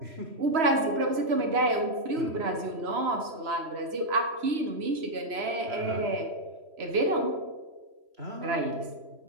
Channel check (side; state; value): left; late; 3.1 ms